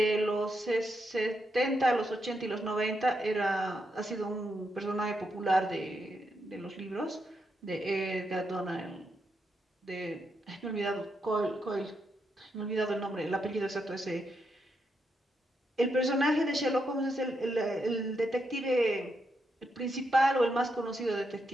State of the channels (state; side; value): normal; both; correlation 0.82